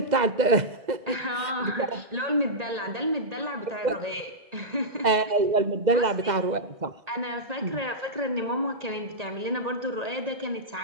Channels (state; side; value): late; left; 2.0 ms